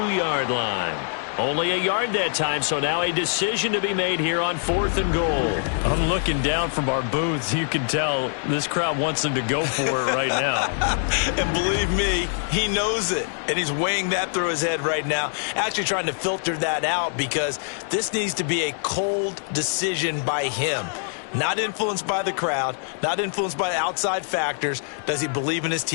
line. Only a yard that time, so now a decision to be made here on 4th and goal. I'm looking down from our booths. You can tell this crowd wants them to go for it right now. And believe me, he knows it. And he's weighing that through his head right now. Actually trying to filter that out because this needs to be a cold decision by him. Not influenced by the crowd, not influenced by outside factors. Does he believe in his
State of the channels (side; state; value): right; silent; digital silence